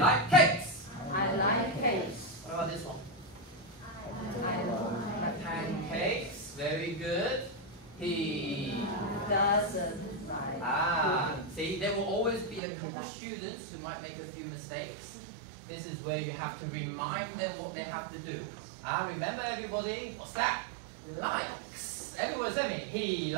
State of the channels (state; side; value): drops out; left; at 12.6 s